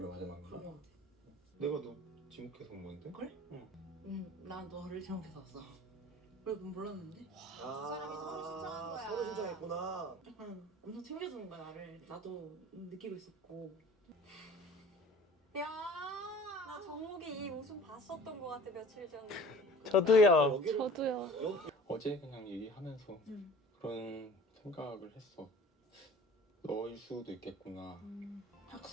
마지막인가? 그럼. 내가 너 지목해서 온 건데? 그래? 난 너를 지목해서 왔어. 왜 그건 몰랐는데? 사람이 서로 신청한 거야. 서로 신청했구나. 약간 엄청 챙겨주는 거야 나를. 나도 느끼고 있었고. 야, 나 정목이 이 웃음 봤었던 것 같아 며칠 전에. 저도요. 저도요. 어제 그냥 얘기하면서 그런 생각을 했어. 너일 수도 있겠구나.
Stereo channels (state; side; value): normal; both; correlation 0.45